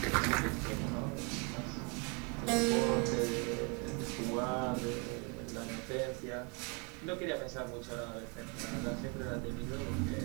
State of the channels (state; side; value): quieter; left; 33.7 dB